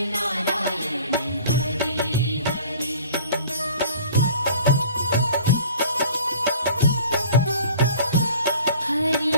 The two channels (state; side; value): inverted; both; correlation -0.47